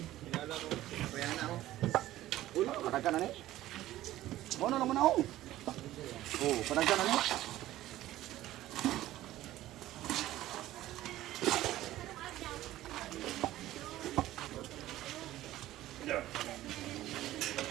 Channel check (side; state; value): left; quieter; 14.9 dB